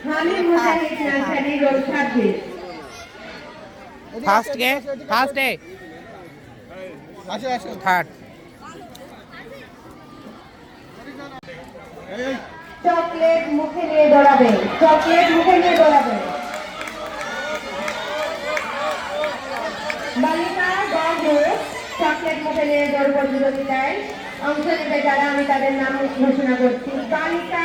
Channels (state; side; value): identical; both; correlation 1.00